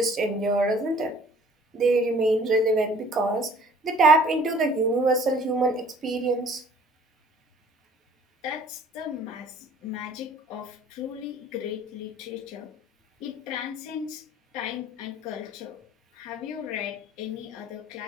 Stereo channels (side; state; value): both; normal; correlation 0.53